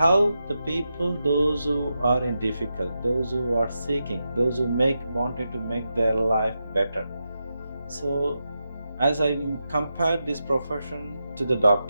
the people, those who are in difficult, those who are seeking, those who wanted to make their life better. So as I compare this profession to the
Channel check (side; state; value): both; inverted; correlation -0.88